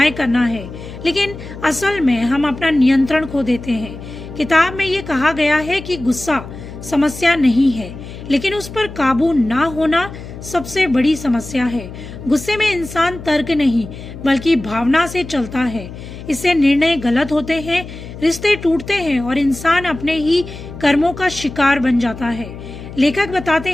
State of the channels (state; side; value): noise; left; hum, 13 dB below the sound